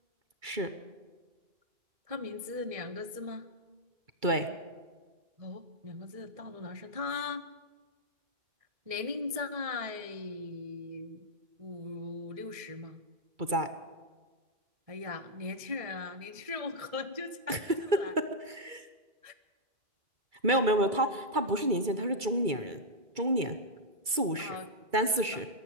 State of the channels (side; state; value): left; late; 2.3 ms